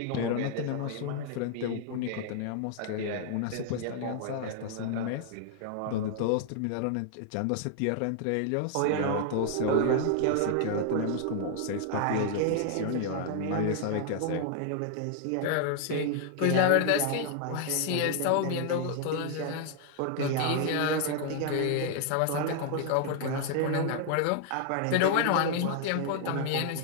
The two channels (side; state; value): both; different; correlation 0.00